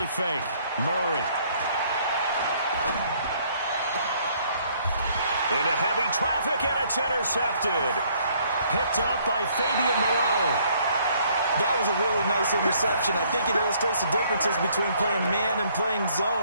fake. Murray. Into heavy traffic, and it's intercepted. Picked up by Fabian Moreau. That was a really nice interception. I think it illustrates the differences between playing man and playing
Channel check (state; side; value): inverted; both; correlation -0.64